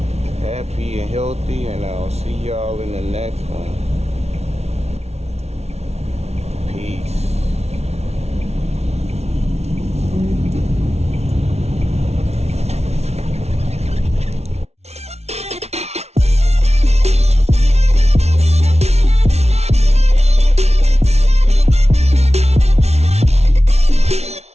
happy and healthy, and I'll see y'all in the next one.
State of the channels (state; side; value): late; left; 0.31 ms